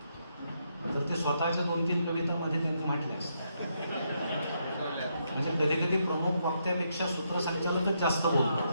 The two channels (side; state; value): both; inverted; correlation -0.78